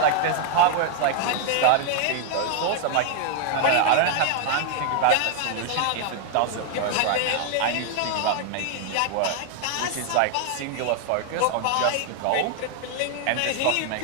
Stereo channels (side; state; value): both; different; correlation 0.00